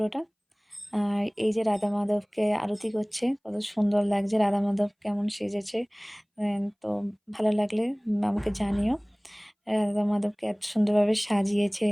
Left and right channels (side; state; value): both; identical; correlation 1.00